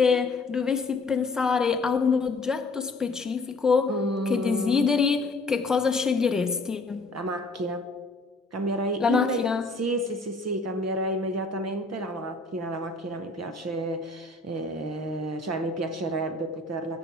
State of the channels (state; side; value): quieter; right; 3.2 dB